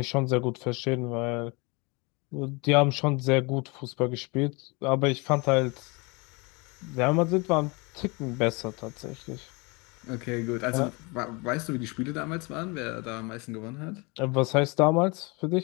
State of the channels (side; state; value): right; quieter; 28.3 dB